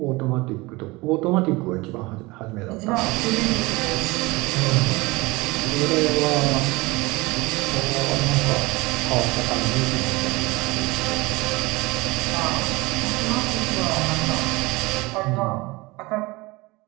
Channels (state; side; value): quieter; left; 22.8 dB